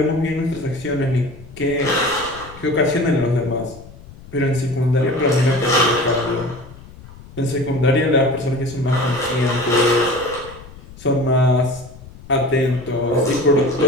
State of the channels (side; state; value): left; noise; rumble, 19 dB below the sound